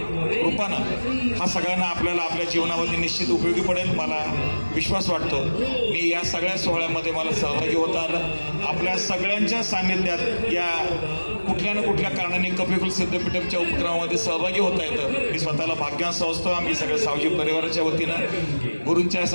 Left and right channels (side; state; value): both; inverted; correlation -1.00